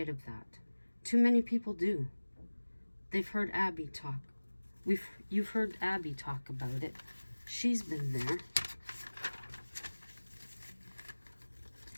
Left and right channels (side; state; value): both; inverted; correlation -1.00